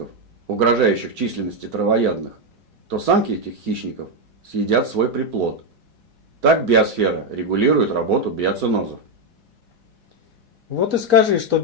угрожающих численности травоядных, то самки этих хищников съедят свой приплод. Так биосфера регулирует работу биоценозов. Вот и скажи, что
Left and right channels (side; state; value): left; late; 4.3 ms